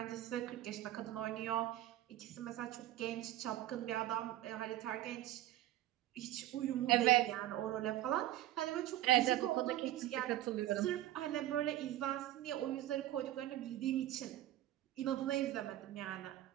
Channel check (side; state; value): left; quieter; 14.2 dB